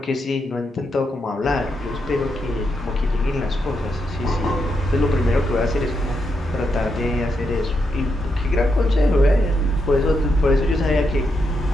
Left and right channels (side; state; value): both; normal; correlation 0.82